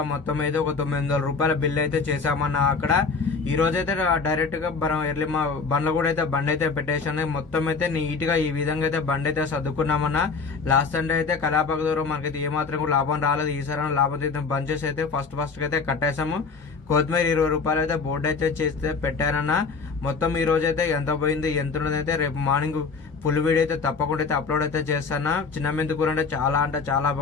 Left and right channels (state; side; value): quieter; right; 4.8 dB